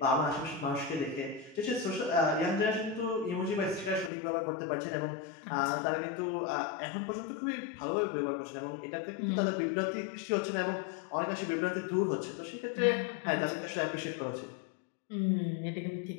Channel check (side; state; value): right; drops out; at 4.1 s